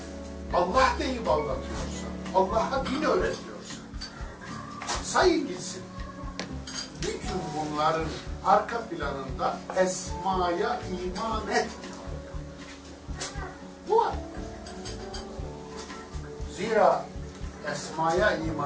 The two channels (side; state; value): both; identical; correlation 1.00